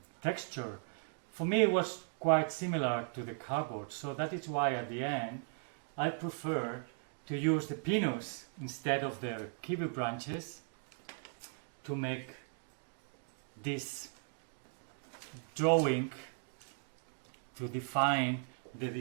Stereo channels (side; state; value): left; silent; 53 dB below the other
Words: texture? For me, it was quite similar to the cardboard. So that is why at the end, I prefer to use the pinus instead of the kiwi branches to make this drawing, to define the